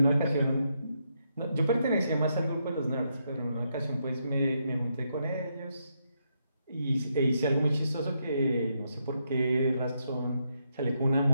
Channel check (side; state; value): both; inverted; correlation -0.79